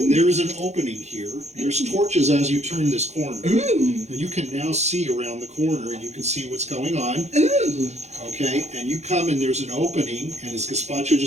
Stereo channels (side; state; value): left; late; 0.32 ms